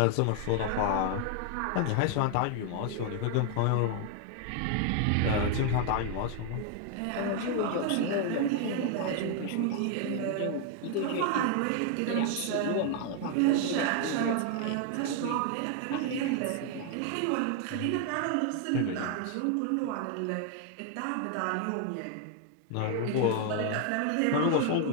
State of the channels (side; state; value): both; different; correlation 0.00